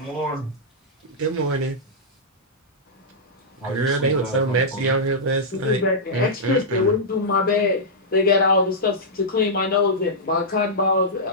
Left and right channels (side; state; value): both; normal; correlation -0.10